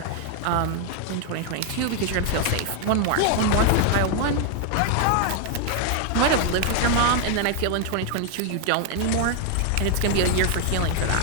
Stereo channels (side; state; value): both; different; correlation 0.00